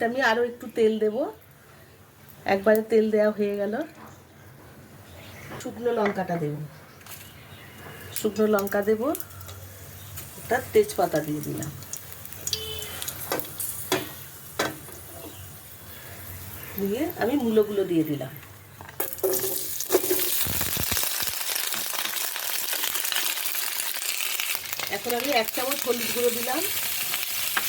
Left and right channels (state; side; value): identical; both; correlation 1.00